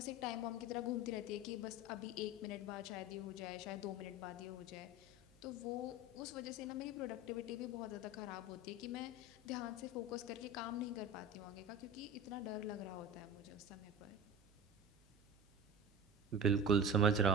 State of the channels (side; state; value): right; noise; hum, 28 dB below the sound